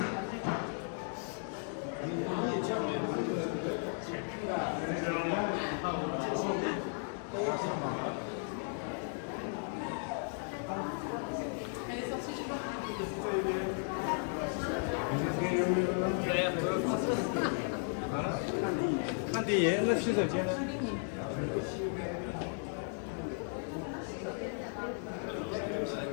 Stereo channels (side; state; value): right; silent; 54 dB below the other